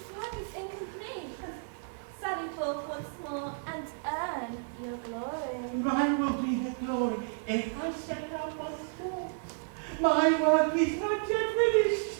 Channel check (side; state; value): left; silent; digital silence